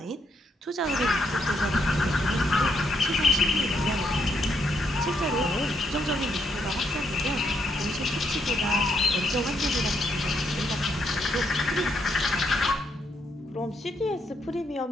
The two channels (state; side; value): normal; both; correlation 0.76